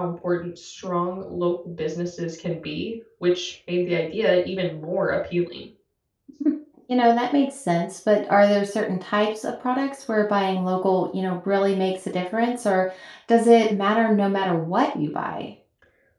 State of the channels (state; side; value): identical; both; correlation 1.00